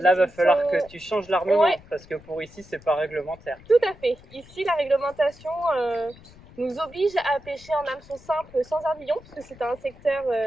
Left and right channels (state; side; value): noise; left; rumble, 23 dB below the sound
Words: va falloir que tu changes l'armement parce que pour ici, c'est pas réglementaire. Tout à fait. Ici, la réglementation nous oblige à pêcher en hameçon simple sans ardillon, parce que c'est un secteur